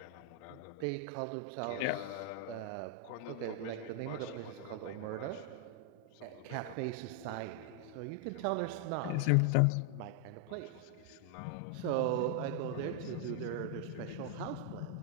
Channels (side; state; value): both; different; correlation 0.00